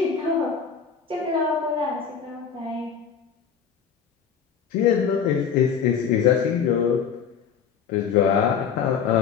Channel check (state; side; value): quieter; right; 7.1 dB